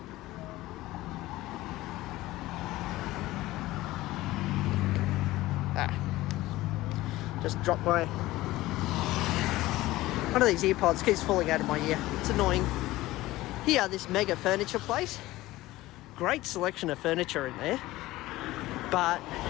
Just dropped my... One of these earpods keeps falling out of my ear. It's annoying. Here, this mega furniture place. Great selection of furniture in there. But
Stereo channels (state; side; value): quieter; right; 17.6 dB